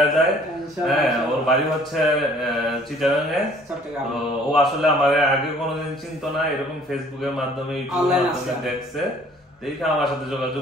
যায়। হ্যাঁ, ওর বাড়ি হচ্ছে চিটাগাঙে। তো ও আসলে আমার আগে কোনোদিন চিনতো না, এরকম ফেসবুকের মাধ্যমে, ইউটিউবের মাধ্যমে দেখছে, দেখে আমার সাথে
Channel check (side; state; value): both; normal; correlation 0.55